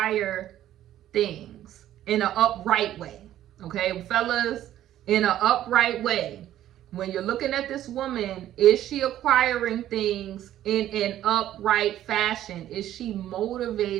things in an upright way. Okay, fellas, in an upright way. When you're looking at this woman, is she acquiring things in an upright fashion? Is she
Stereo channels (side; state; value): left; quieter; 12.4 dB